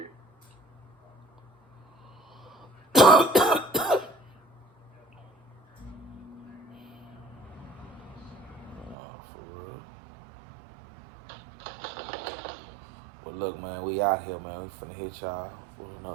But look, man, we out here, man. We finna hit y'all with another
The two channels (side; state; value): left; drops out; at 9.0 s